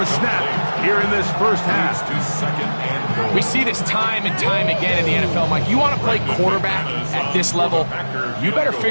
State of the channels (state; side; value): inverted; both; correlation -1.00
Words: snap here in this first half. We see this time and time again in the NFL, Mike. You want to play quarterback at this level, you better